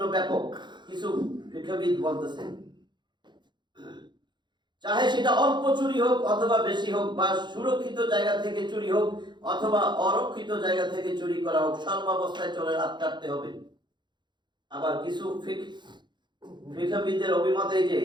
ব্যাপক। কিছু ফিকহবিদ বলতেছেন চাহে সেটা অল্প চুরি হোক অথবা বেশি হোক, বা সুরক্ষিত জায়গা থেকে চুরি হোক অথবা অরক্ষিত জায়গা থেকে চুরি করা হোক, সর্বাবস্থায় চোরের হাত কাটতে হবে। আবার কিছু ফিকহবিদদের অভিমত এই যে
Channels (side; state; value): left; late; 0.22 ms